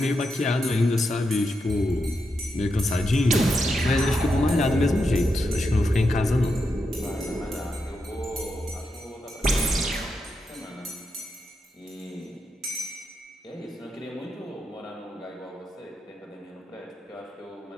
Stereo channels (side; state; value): both; normal; correlation 0.85